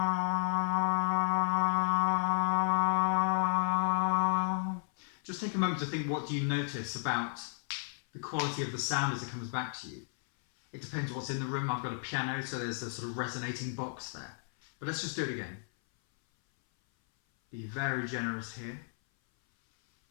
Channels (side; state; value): right; silent; 56 dB below the other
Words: Just take a moment to think, what do you notice about the quality of the sound as it comes back to you? It depends what's in the room. I've got a piano, so there's a sort of resonating box there. But let's just do it again. Be very generous here.